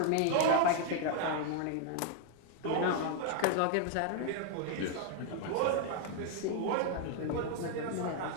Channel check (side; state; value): both; different; correlation 0.00